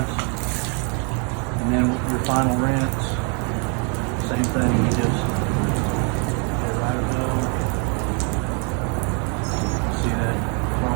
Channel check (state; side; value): quieter; left; 36.4 dB